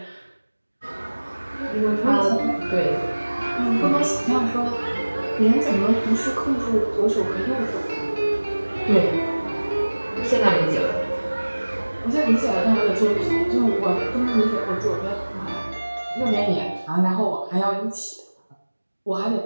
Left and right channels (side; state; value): both; inverted; correlation -1.00